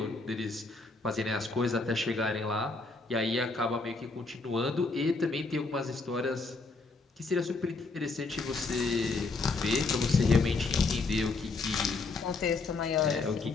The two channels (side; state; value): right; quieter; 3.8 dB